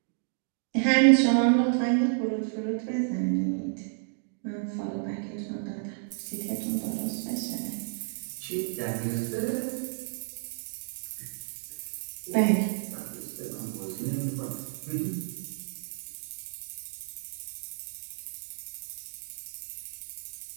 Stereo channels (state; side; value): silent; left; digital silence